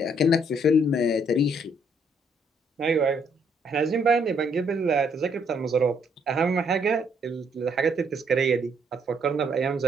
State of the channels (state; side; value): normal; both; correlation 0.69